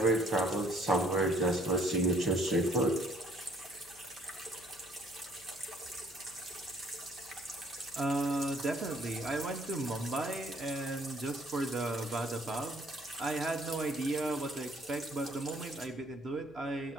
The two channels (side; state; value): left; noise; hum, 25 dB below the sound